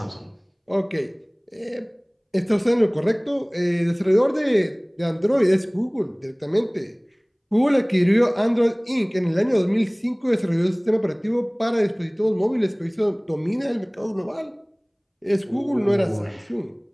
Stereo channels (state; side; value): identical; both; correlation 1.00